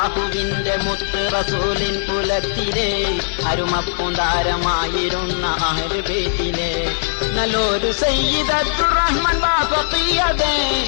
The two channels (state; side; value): silent; right; 57 dB below the other